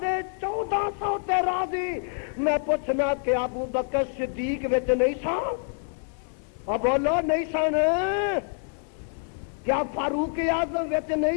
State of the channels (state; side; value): silent; right; 59 dB below the other